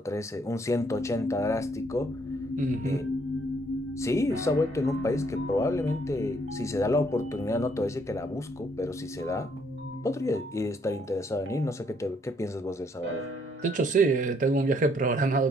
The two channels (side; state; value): both; normal; correlation 0.68